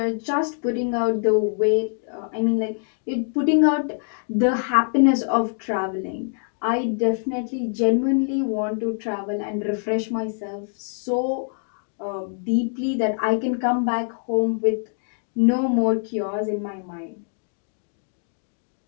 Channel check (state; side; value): silent; right; 59 dB below the other